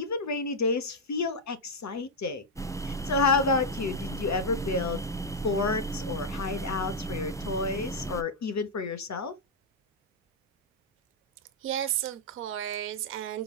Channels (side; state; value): both; normal; correlation -0.01